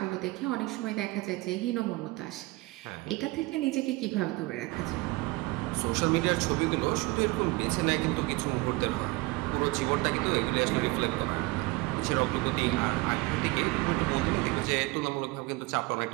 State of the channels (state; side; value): quieter; left; 22.5 dB